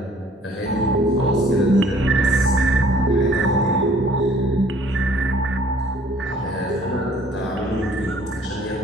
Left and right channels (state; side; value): normal; both; correlation 0.57